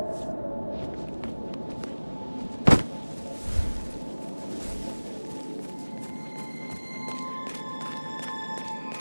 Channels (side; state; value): both; inverted; correlation -1.00